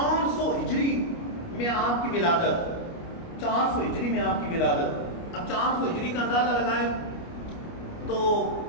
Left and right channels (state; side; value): late; right; 29 ms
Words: ہجری میں آپ کی ولادت، 400 ہجری میں آپ کی ولادت، اب 400 ہجری کا اندازہ لگائیں تو